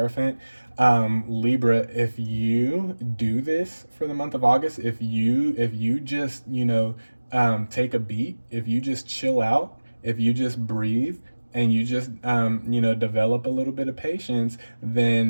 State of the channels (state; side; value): inverted; both; correlation -1.00